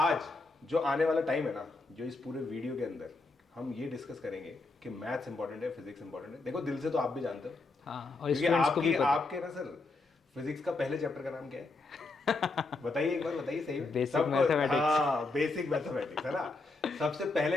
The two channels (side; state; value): right; quieter; 3.4 dB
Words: जो आने वाला टाइम है ना, जो इस पूरे वीडियो के अंदर हम ये डिस्कस करेंगे कि मैथ्स इंपॉर्टेंट है, फिजिक्स इंपॉर्टेंट है। देखो दिल से तो आप भी जानते हो, हाँ, और क्योंकि स्टूडेंट्स को भी आपकी पता। आपके ना सर फिजिक्स का पहले चैप्टर का नाम क्या है? बताइए एक बार, बताइए सही में। Basic mathematics. हाँ, बेसिक मैथमेटिक्स है ना। सबसे